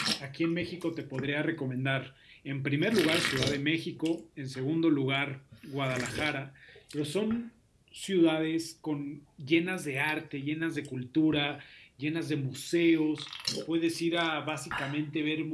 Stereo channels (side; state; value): both; identical; correlation 1.00